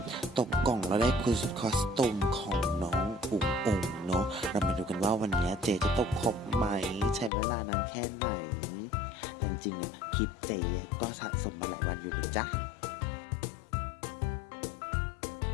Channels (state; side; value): drops out; right; at 7.3 s